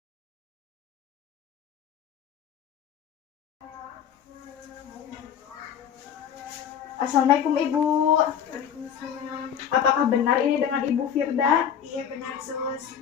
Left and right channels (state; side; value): quieter; right; 8.6 dB